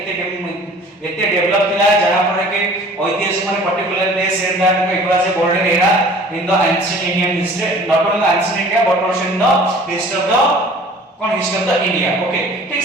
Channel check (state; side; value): normal; both; correlation 0.48